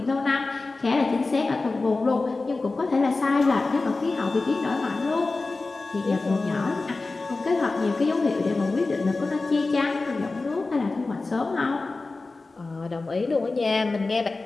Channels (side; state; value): right; quieter; 3.5 dB